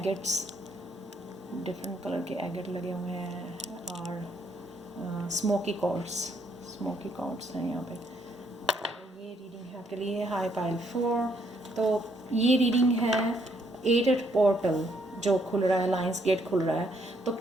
डिफरेंट कलर के एगेट लगे हुए हैं, और स्मोकी कॉर्ड्स हैं यहाँ पे। ये रीडिंग है आपके लिए, हाय पायल 4। तो ये रीडिंग है 8 पोर्टल जो खुल रहा है, लाइंस गेट खुल रहा है। तो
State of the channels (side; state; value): both; normal; correlation 0.71